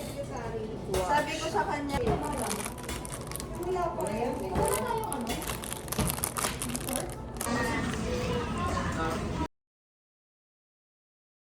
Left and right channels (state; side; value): identical; both; correlation 1.00